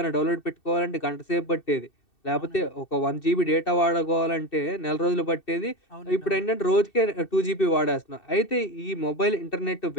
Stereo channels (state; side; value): late; right; 2.7 ms